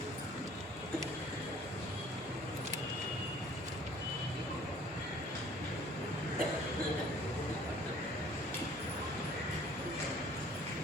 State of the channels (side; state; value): both; normal; correlation 0.54